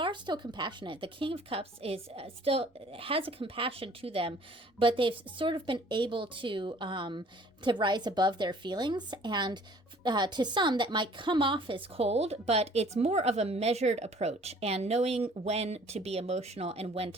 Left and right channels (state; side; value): normal; both; correlation 0.54